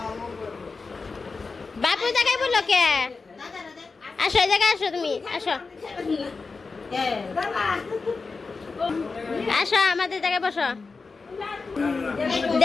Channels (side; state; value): right; quieter; 4.3 dB